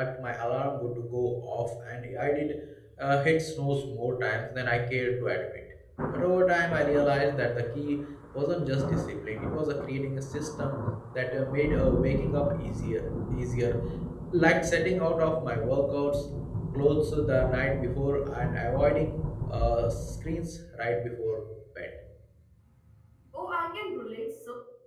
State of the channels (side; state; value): both; identical; correlation 1.00